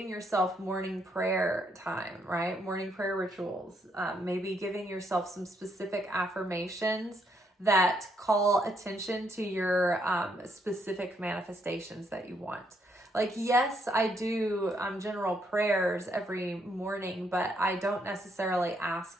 yourself morning prayer time, right? Morning prayer rituals, maybe giving yourself some specific affirmations that call attention to your specific manifestations that you want. Like, yes, I do general prayers every morning, but I don't necessarily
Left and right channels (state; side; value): normal; both; correlation 0.74